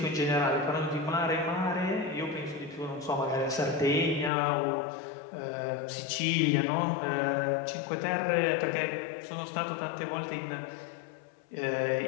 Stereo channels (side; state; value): right; drops out; at 4.3 s